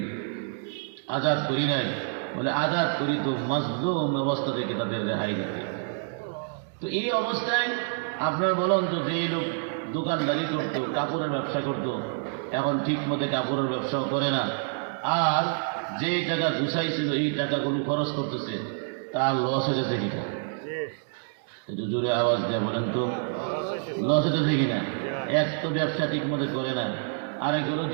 আজাদ করি নাই। বলে, আজাদ করি তো মাজলুম অবস্থা থেকে তাদের রেহাই দিতে। তো এই অবস্থায় আপনার বলেন তো, যে লোক দোকানদারি করতো, কাপড়ের ব্যবসা করতো, এখন ঠিক মতো কাপড়ের ব্যবসাও করে না, আর যেই টাকা গুছাইছিল এই টাকাগুলো খরচ করতেছে, তার লস হয়ে যাচ্ছে কিনা? একটু জোরে আওয়াজ দেয়া বলেন তো, লস হতেছে কিনা? এক তো ব্যবসা ঠিক মতো করে না, আরেকগুলো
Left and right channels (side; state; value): left; silent; 60 dB below the other